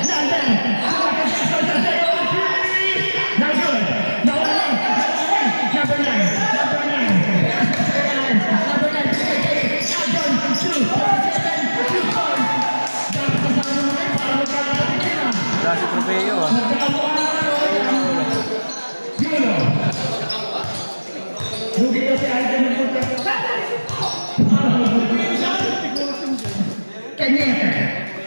London. Michael Jackson. On 3. No good. Nawali. Number 9. Number 9. Number 9. Albon. 2. 7. 2 points. Dapat kasama naman para magkakaroon na. Dasi trofeo ah. Lugi kasi ay ng punta.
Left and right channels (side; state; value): both; inverted; correlation -1.00